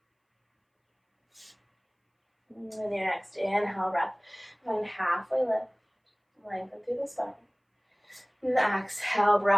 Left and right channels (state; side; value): identical; both; correlation 1.00